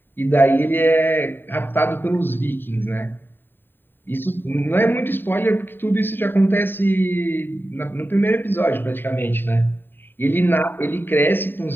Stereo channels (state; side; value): late; right; 0.095 ms